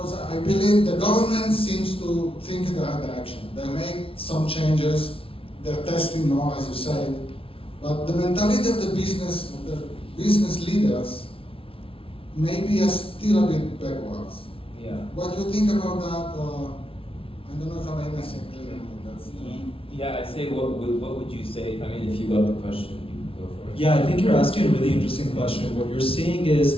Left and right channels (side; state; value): right; late; 0.26 ms